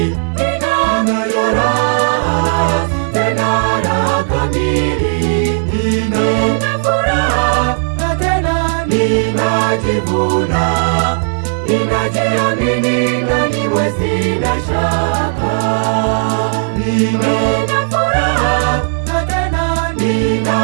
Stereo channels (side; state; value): left; silent; digital silence